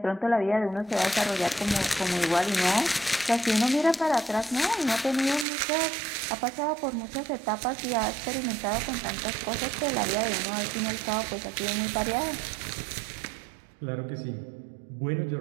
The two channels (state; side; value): drops out; left; at 5.5 s